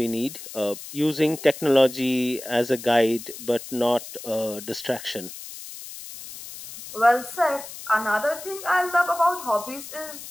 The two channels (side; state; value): left; noise; hiss, 13 dB below the sound